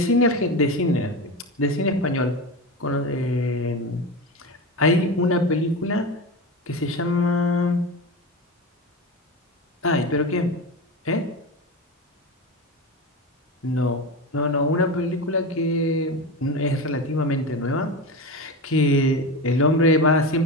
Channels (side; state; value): both; normal; correlation 0.23